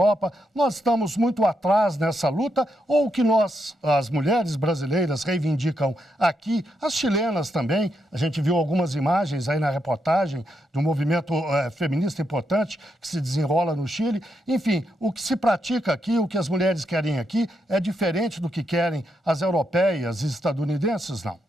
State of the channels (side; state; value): both; normal; correlation 0.81